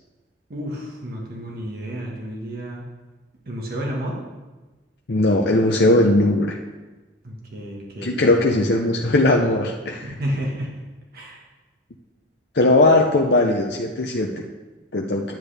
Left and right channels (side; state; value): both; normal; correlation 0.22